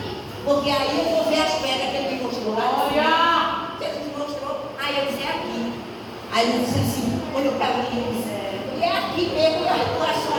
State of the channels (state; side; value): identical; both; correlation 1.00